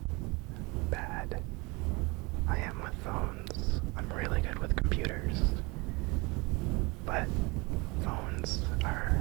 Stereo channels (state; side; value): quieter; left; 26.2 dB